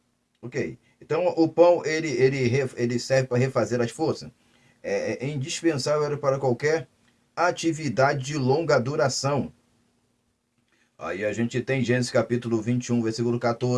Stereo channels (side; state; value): both; identical; correlation 1.00